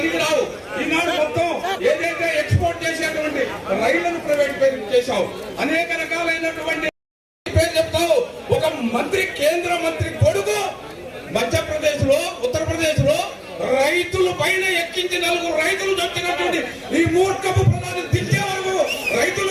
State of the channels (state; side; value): identical; both; correlation 1.00